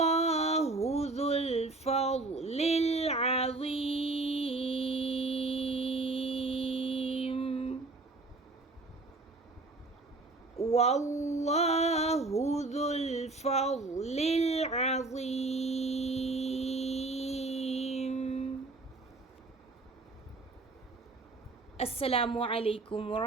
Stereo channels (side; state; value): left; quieter; 3.2 dB